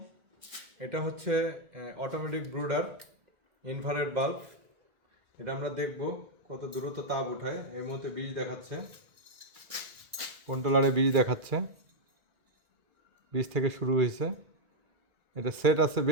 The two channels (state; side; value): late; left; 1.8 ms